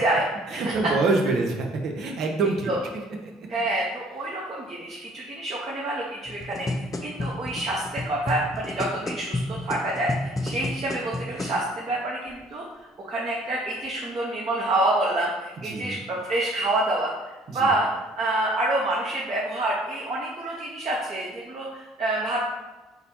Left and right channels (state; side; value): normal; both; correlation 0.56